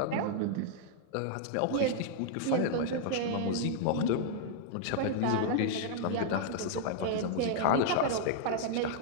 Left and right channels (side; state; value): both; different; correlation -0.01